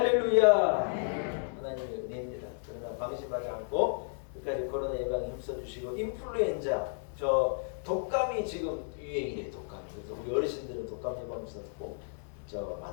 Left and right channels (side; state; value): right; silent; digital silence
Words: 하나님의 은혜입니다. 그러나 방심하지 않고 끝까지 코로나 예방에 힘써주시고 인플루엔자 저 독감이 지금 유행이래요. 독감. 그래서 우리 어르신들은 독감 예방주사 꼭